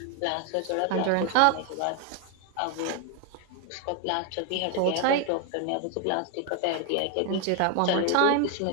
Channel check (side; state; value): both; different; correlation 0.00